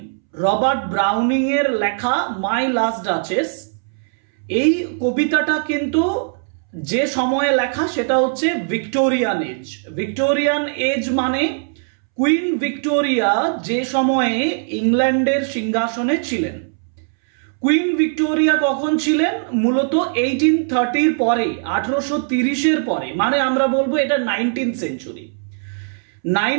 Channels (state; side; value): silent; left; 66 dB below the other